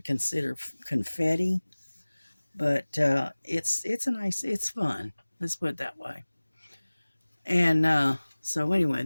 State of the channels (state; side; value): inverted; both; correlation -1.00